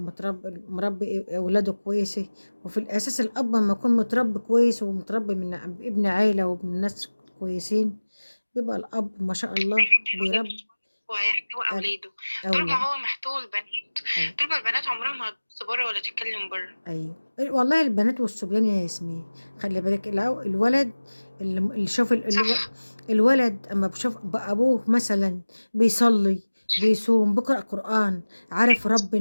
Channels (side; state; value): both; inverted; correlation -1.00